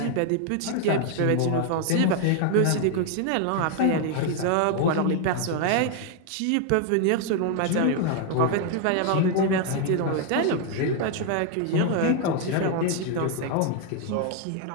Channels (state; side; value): different; both; correlation 0.00